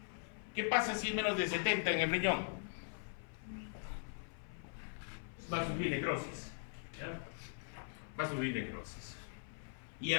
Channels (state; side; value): silent; right; 50 dB below the other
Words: ¿Qué pasa si es menos de 70 en el riñón? Va a sufrir necrosis. ¿Ya? Va a sufrir necrosis. ¿Y